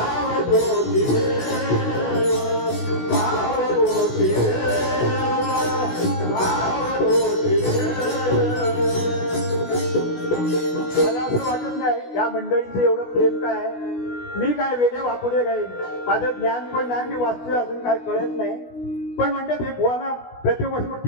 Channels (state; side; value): late; right; 16 ms